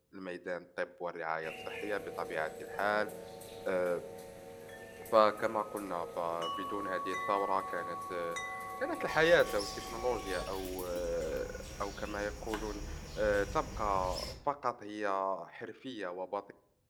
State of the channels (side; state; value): both; identical; correlation 1.00